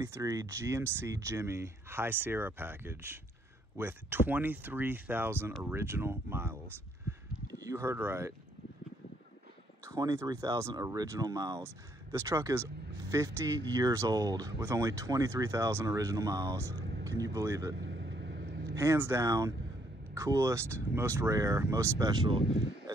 GMC Jimmy High Sierra package with 23,000 original miles. You heard right. 23,000 original miles. This truck is 50 years old with only 23,000 original miles. Can you believe it? Hands down, coolest, most rare, most special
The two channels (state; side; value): normal; both; correlation 0.70